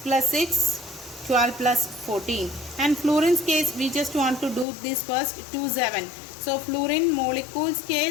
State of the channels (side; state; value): right; drops out; at 4.7 s